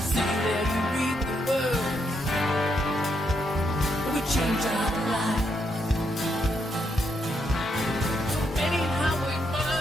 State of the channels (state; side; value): normal; both; correlation 0.78